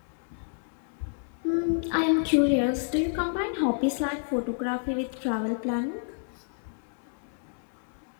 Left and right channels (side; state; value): right; silent; digital silence